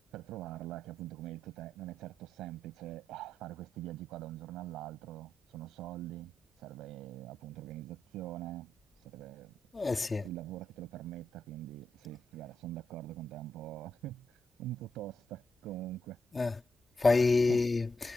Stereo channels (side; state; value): both; normal; correlation 0.85